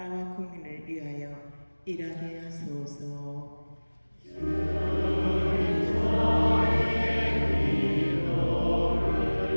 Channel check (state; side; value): inverted; both; correlation -1.00